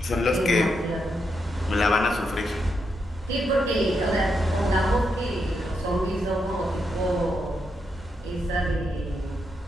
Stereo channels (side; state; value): both; normal; correlation 0.82